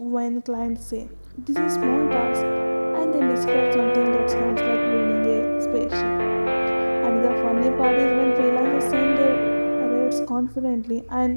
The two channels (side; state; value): both; inverted; correlation -1.00